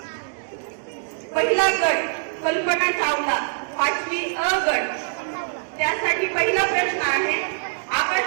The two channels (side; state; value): left; silent; digital silence